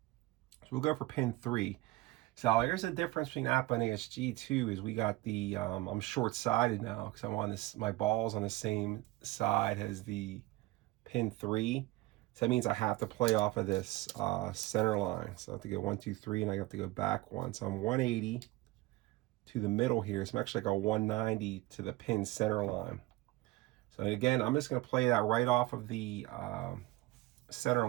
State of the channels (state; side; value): quieter; left; 18.8 dB